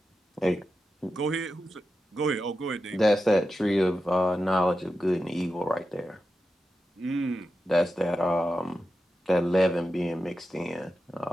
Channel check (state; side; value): normal; both; correlation 0.90